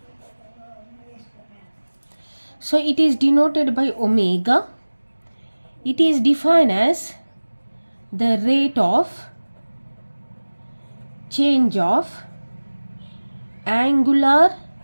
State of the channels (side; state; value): both; inverted; correlation -1.00